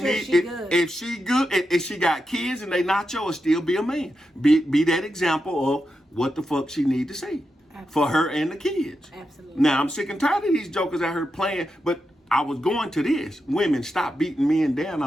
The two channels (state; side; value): normal; both; correlation 0.87